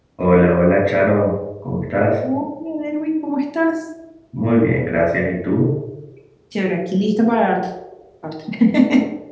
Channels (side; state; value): both; identical; correlation 1.00